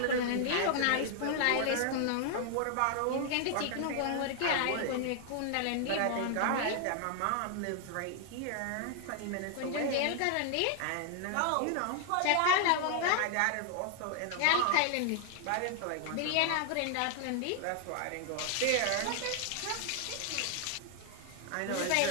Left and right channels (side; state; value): both; different; correlation 0.00